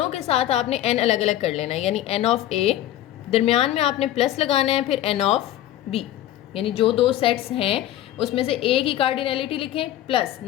के साथ आपने एन अलग अलग कर लेना है। यानी एन ऑफ ए, दरमियान में आपने प्लस लगाना है, फिर एन ऑफ बी, यानी जो 2 सेट्स हैं उसमें से ए की कार्डिनैलिटी लिखें, plus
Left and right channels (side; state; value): right; quieter; 13.1 dB